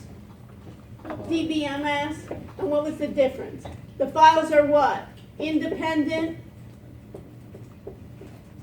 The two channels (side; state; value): both; identical; correlation 1.00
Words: DBMS, and what was the difference? The files are what? Independent.